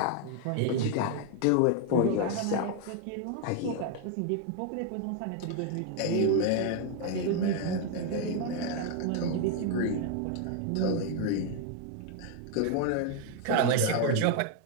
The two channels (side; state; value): both; different; correlation 0.01